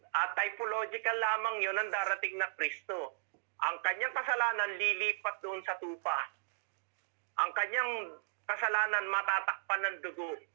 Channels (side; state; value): left; silent; digital silence